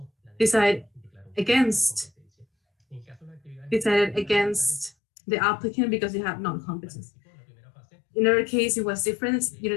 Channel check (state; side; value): drops out; right; at 4.9 s